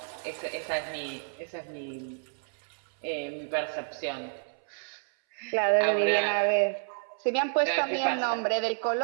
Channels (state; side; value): silent; left; 58 dB below the other